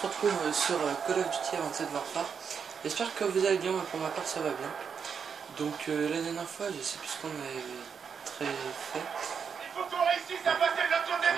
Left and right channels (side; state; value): left; quieter; 6.6 dB